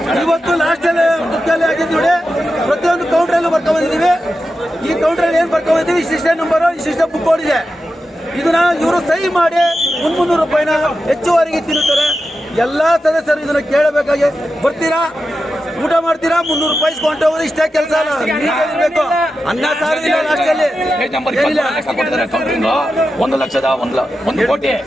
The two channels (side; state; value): both; normal; correlation 0.90